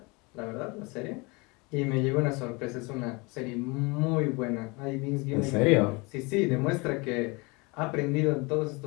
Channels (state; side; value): quieter; right; 27.4 dB